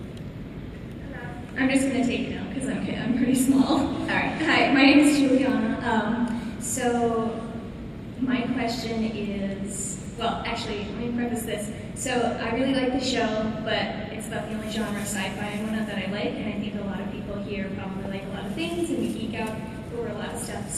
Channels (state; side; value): identical; both; correlation 1.00